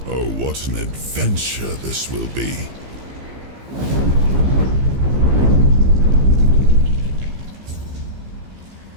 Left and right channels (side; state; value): left; late; 15 ms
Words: Oh, what an adventure this will be.